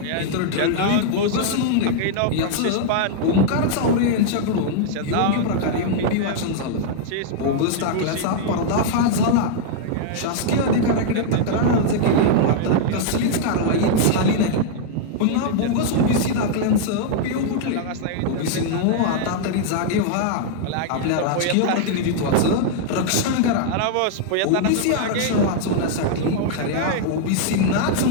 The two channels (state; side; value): different; both; correlation -0.01